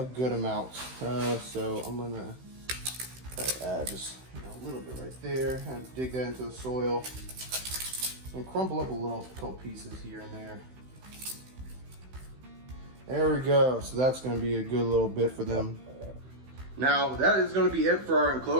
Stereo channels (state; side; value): late; left; 16 ms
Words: good amount. So I'm gonna try to add just a little bit right there and dig that into the soil and crumble up a couple pieces here and there. There we go. So that's gonna be a good little bit for them. Now that is gonna be it for our